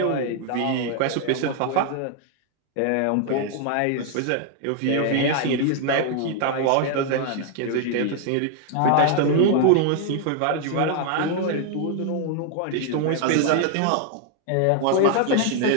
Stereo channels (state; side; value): different; both; correlation 0.00